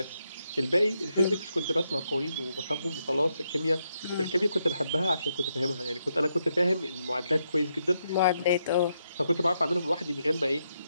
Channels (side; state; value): both; inverted; correlation -0.80